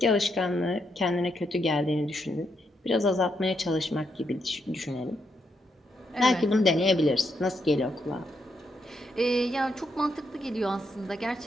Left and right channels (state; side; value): normal; both; correlation 0.79